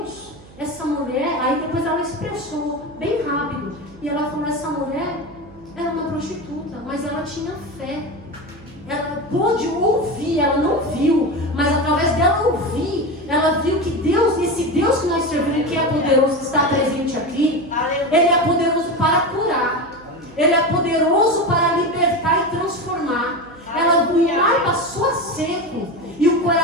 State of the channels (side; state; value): right; noise; hum, 22 dB below the sound